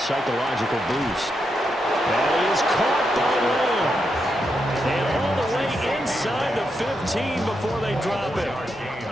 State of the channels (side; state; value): both; normal; correlation 0.83